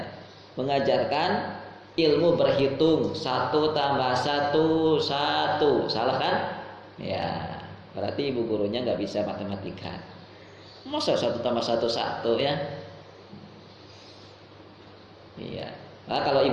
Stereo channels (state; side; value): identical; both; correlation 1.00